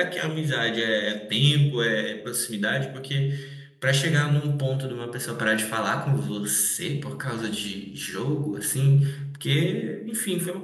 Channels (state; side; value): identical; both; correlation 1.00